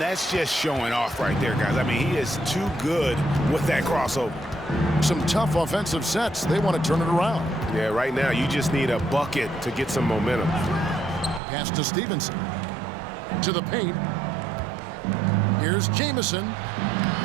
just showing off right there, guys. I mean, he is too good with that crossover. Some tough offensive sets. They want to turn it around. Yeah, right now you just need a bucket to get some momentum. Pass to Stevenson. To the paint. Here's Jamison.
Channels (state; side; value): drops out; left; at 11.4 s